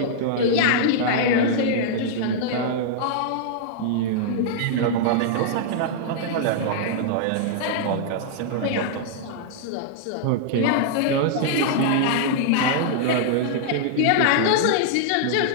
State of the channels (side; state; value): both; different; correlation -0.01